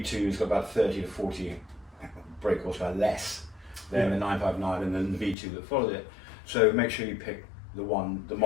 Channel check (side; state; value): right; drops out; at 5.4 s